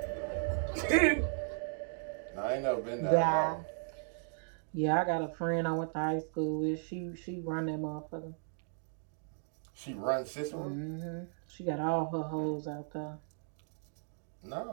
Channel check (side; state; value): left; silent; 54 dB below the other